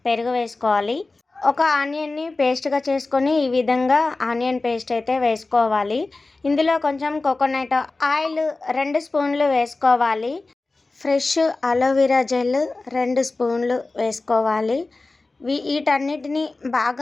పెరుగు వేసుకోవాలి. ఒక ఆనియన్ని పేస్ట్గా చేసుకొని ఈ విధంగా ఆనియన్ పేస్ట్ అయితే వేసుకోవాలి. ఇందులో కొంచెం కోకోనట్ ఆయిల్ 2 స్పూన్లు వేసుకోవాలి. ఫ్రెష్ అలోవెరా జెల్ 2 స్పూన్లు వేసుకోవాలి. వీటన్నిటిని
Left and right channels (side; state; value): right; quieter; 3.4 dB